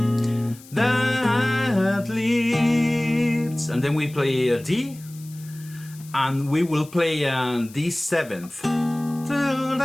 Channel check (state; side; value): noise; left; hiss, 21 dB below the sound